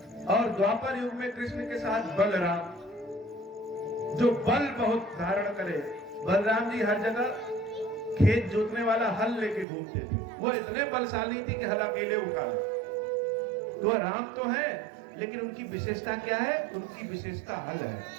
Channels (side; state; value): left; drops out; at 9.7 s